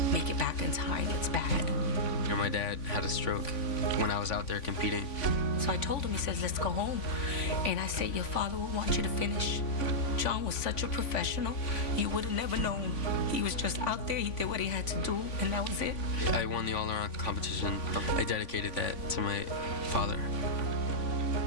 make it back in time. It's bad. And my dad had a stroke when I was out there competing. So I told him, he says, let's go home. And I said, your father will want you to finish. John was such a professional. You would have never known. He was just out there. He did what he had to do, and that was it. I won the all-around competition. I dedicated that to my father.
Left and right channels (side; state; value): right; late; 3.5 ms